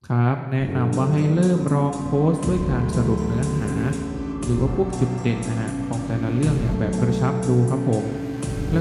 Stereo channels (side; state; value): both; identical; correlation 1.00